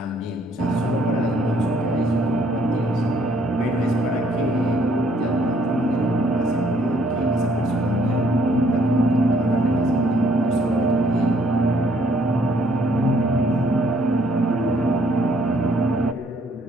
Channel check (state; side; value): normal; both; correlation 0.65